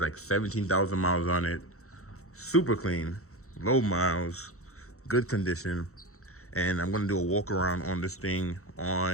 17,000 miles on it. Super clean, low miles, good condition. And I'm gonna do a walk around on this thing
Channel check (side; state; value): right; late; 0.64 ms